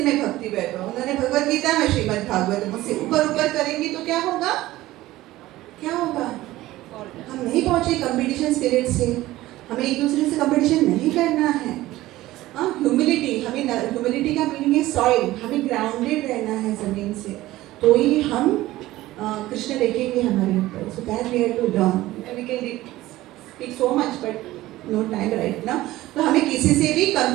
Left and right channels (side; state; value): left; quieter; 16.7 dB